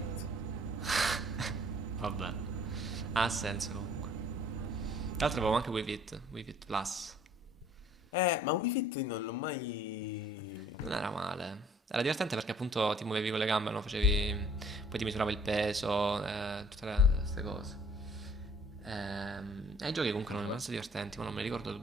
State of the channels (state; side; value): normal; both; correlation 0.56